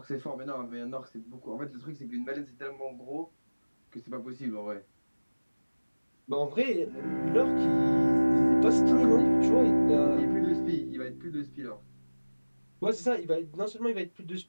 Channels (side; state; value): both; inverted; correlation -1.00